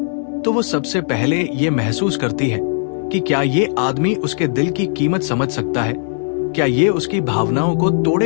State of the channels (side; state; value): right; silent; digital silence